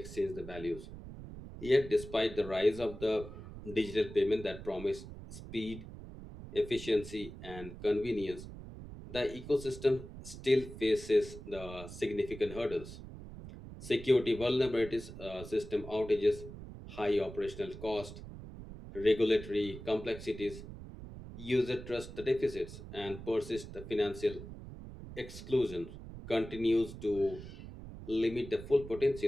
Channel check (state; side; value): noise; right; rumble, 12 dB below the sound